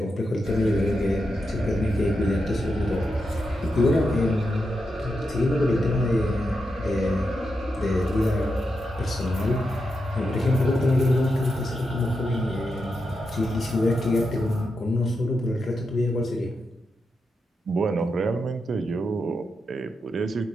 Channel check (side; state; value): both; normal; correlation 0.86